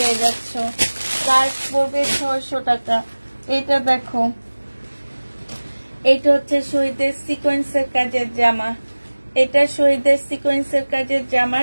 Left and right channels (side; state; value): both; inverted; correlation -1.00